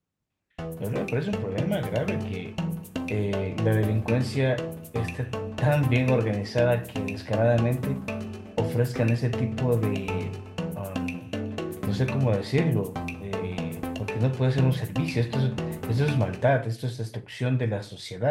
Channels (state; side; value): identical; both; correlation 1.00